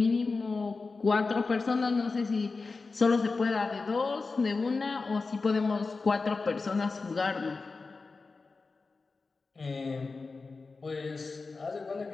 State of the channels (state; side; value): quieter; right; 4.1 dB